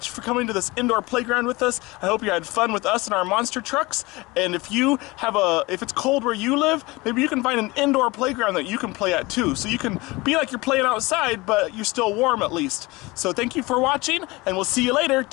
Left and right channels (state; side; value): quieter; right; 22.8 dB